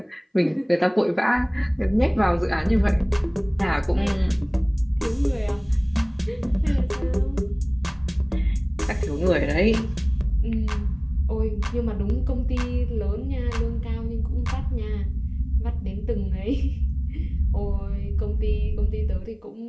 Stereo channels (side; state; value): both; identical; correlation 1.00